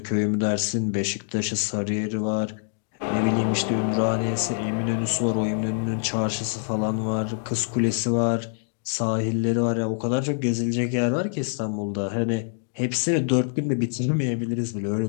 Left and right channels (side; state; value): right; silent; digital silence